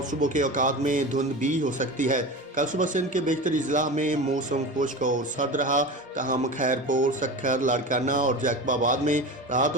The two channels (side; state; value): both; normal; correlation 0.29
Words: صبح کے اوقات میں دھند بھی ہو سکتی ہے۔ کل صبح سندھ کے بیشتر اضلاع میں موسم خشک اور سرد رہا، تاہم خیرپور، سکھر، لاڑکانہ اور جیکب آباد میں رات